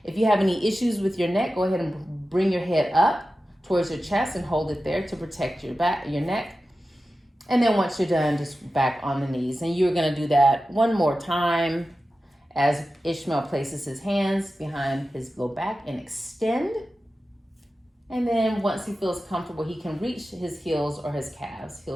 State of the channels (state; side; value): normal; both; correlation 0.94